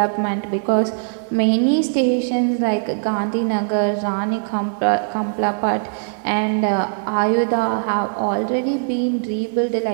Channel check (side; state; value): left; silent; digital silence